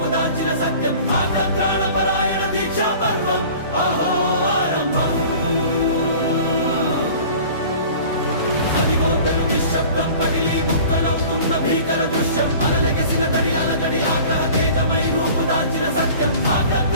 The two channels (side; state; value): both; inverted; correlation -0.44